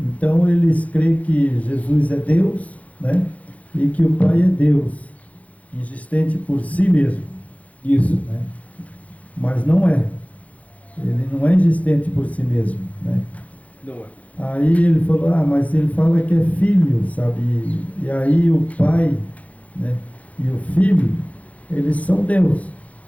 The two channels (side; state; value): right; late; 0.068 ms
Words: eles creem que Jesus é Deus, né, e que o Pai é Deus, existente por si mesmo. Isso. Né? Mas não é. Ele não é existente por si mesmo. Né? Não é. Aí ele falou: mas ele fala que é filho, sabe? E aí o Pai, né, e o Filho, eles são Deus.